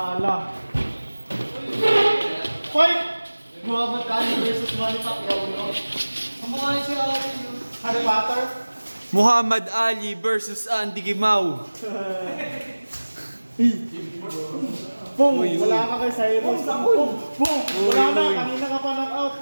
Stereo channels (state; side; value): inverted; both; correlation -1.00